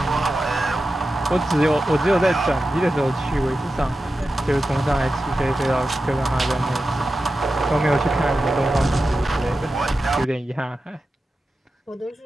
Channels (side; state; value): both; normal; correlation 0.92